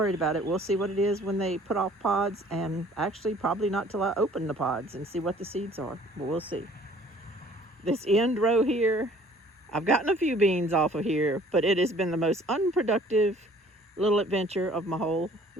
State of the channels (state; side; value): normal; both; correlation 0.54